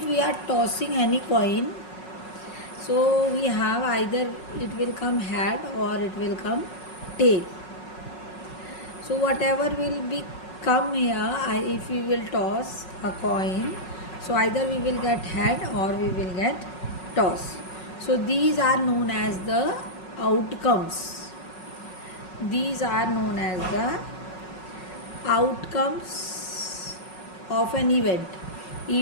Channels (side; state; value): right; late; 5.4 ms